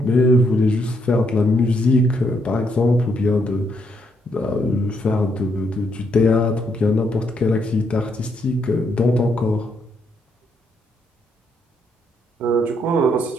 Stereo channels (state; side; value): normal; both; correlation 0.75